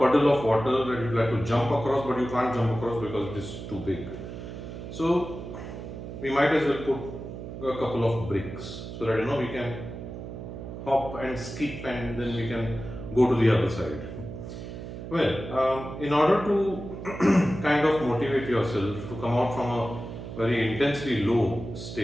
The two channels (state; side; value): noise; right; hum, 9 dB below the sound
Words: of water that you'd like to jump across, but you can't jump across because it is too big. So we might as well put a couple of bricks so that we can hop and skip and then we can go to the other side. Well, in order to kind of motivate yourself to come out from a very intensely low